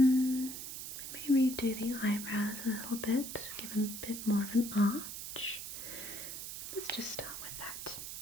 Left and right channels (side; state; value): right; noise; hiss, 7 dB below the sound